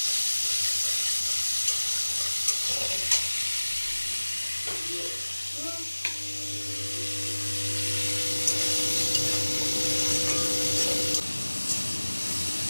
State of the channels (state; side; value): inverted; both; correlation -1.00